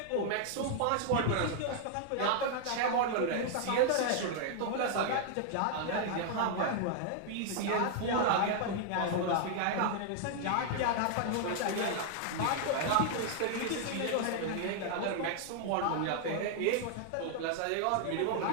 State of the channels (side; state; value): both; different; correlation 0.00